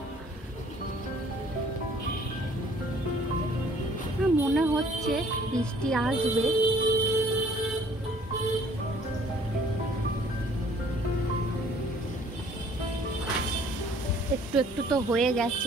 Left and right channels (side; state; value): both; normal; correlation 0.57